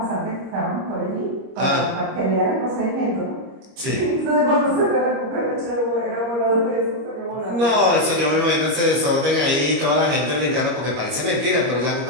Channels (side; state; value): left; late; 25 ms